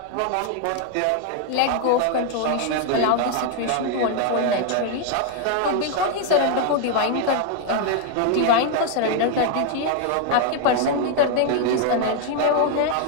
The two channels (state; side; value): different; both; correlation 0.00